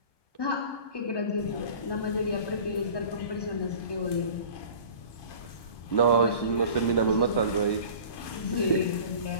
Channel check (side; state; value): right; late; 1.1 ms